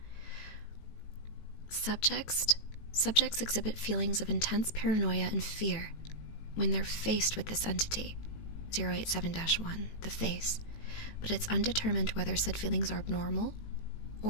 Subjects exhibit feelings of intense paranoia and fear when they're faced with this entity, 087-1, the face, but it's undetermined whether said feelings are abnormal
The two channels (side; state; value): right; late; 18 ms